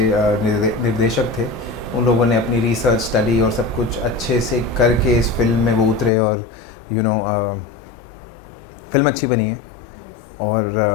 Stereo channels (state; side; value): drops out; right; at 6.1 s